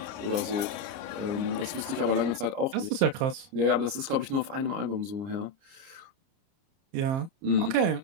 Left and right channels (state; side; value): late; left; 29 ms